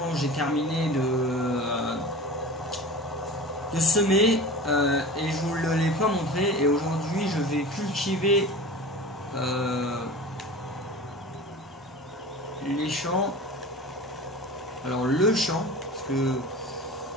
j'ai terminé de semer et je vous ne l'ai pas montré. Et aujourd'hui, je vais cultiver les champs. Alors le champ, parce que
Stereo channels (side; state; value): both; normal; correlation 0.35